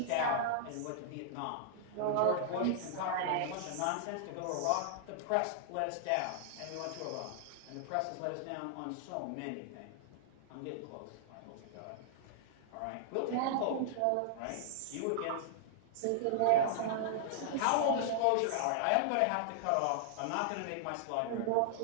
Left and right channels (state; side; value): different; both; correlation -0.01